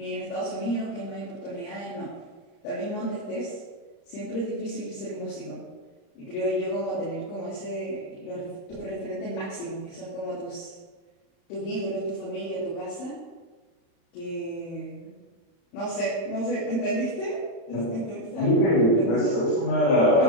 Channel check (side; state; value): right; late; 35 ms